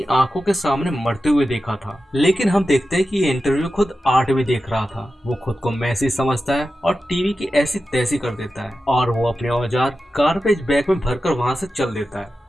आंखों के सामने मरते हुए देखा था। लेकिन हम देखते हैं कि ये इंटरव्यू खुद आर्ट भी देख रहा था। वो खुद को मैसी समझता है और टीवी की ऐसी तैसी कर देता है, और वो अपने औजार गार्बेज बैग में भरकर वहाँ से चल देता है।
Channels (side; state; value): both; normal; correlation 0.92